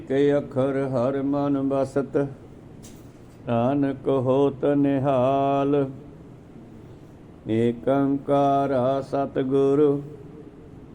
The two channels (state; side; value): identical; both; correlation 1.00